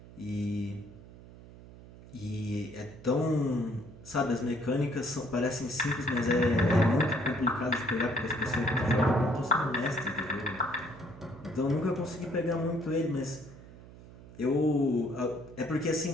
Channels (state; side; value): noise; right; hum, 18 dB below the sound